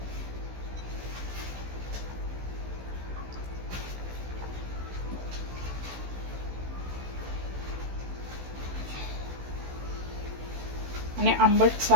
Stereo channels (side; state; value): left; late; 16 ms